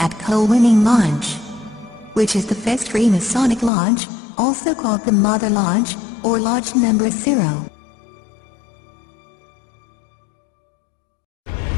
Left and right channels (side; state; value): right; drops out; at 3.7 s